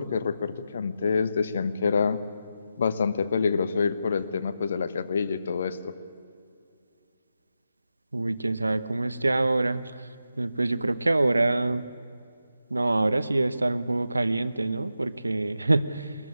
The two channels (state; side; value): inverted; both; correlation -0.88